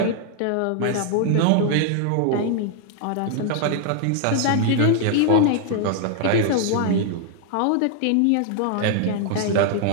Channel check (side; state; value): both; different; correlation 0.00